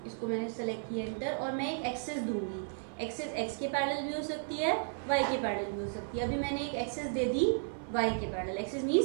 इसको मैंने सेलेक्ट किया एंटर, और मैं एक एक्सेस दूंगी। एक्सेस एक्स के पैरेलल भी हो सकती है, वाई के पैरेलल भी हो सकती है। अभी मैंने एक एक्सेस दे दी वाई के parallel. Axis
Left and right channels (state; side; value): silent; left; 55 dB below the other